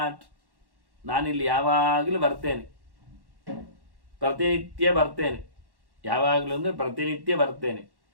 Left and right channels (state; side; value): late; left; 1.1 ms